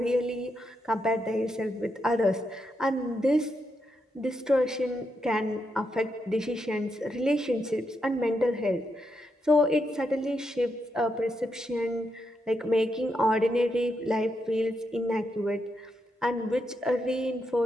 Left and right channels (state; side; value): normal; both; correlation 0.82